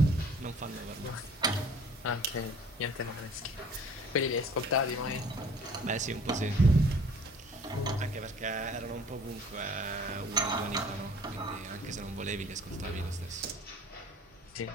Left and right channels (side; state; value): both; normal; correlation 0.51